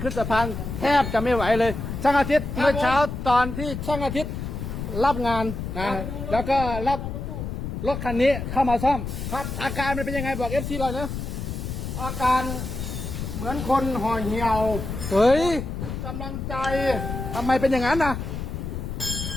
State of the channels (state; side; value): noise; left; rumble, 5 dB below the sound